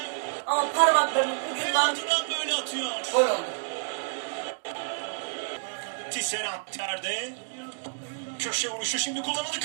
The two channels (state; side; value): silent; left; digital silence